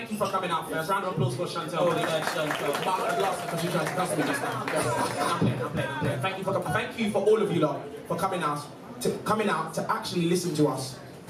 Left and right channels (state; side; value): identical; both; correlation 1.00